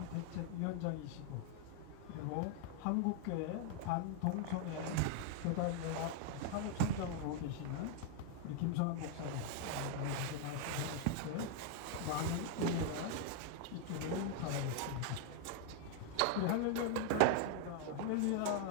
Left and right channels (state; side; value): different; both; correlation 0.00